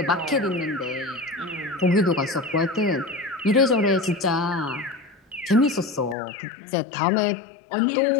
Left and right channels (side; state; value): right; drops out; at 6.2 s